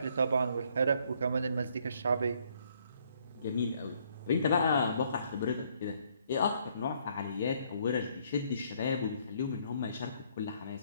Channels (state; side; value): inverted; both; correlation -0.67